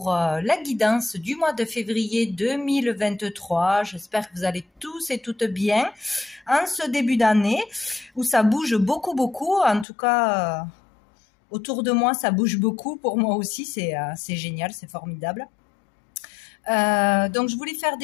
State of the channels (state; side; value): drops out; right; at 9.9 s